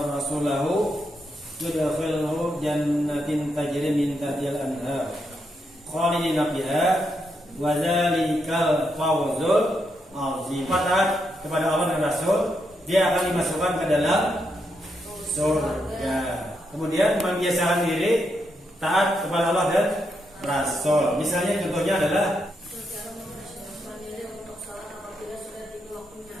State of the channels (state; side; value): normal; both; correlation 0.81